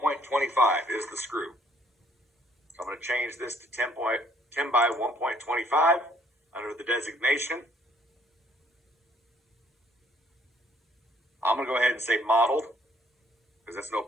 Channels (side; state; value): both; normal; correlation 0.64